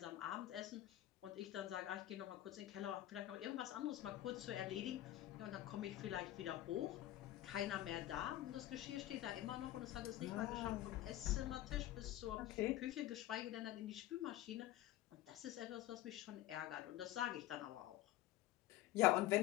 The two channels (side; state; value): right; quieter; 14.4 dB